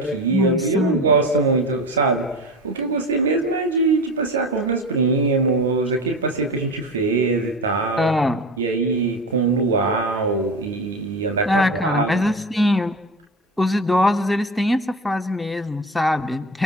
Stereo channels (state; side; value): normal; both; correlation 0.27